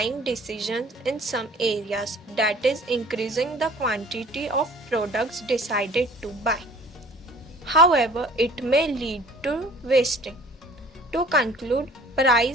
decisions in some areas, that is, increasing the quantity of products decided to buy. However, it may lead to wasting. To conclude,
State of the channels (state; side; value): normal; both; correlation 0.49